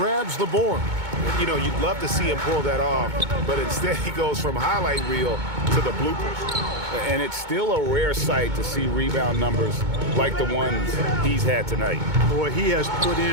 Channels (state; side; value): late; left; 2.2 ms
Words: the board. You know, you'd love to see him pull that off, but instead he goes from highlight reel to the bloopers. And it's still a rare sight to see rebound numbers like the ones he's had tonight. Boy, he has put